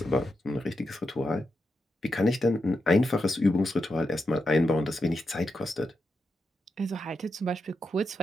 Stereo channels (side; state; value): both; normal; correlation 0.86